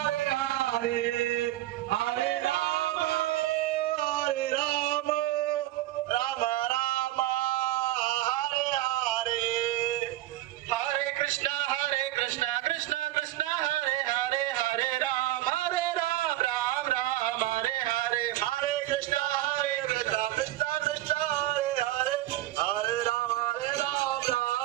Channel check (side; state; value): left; quieter; 15.4 dB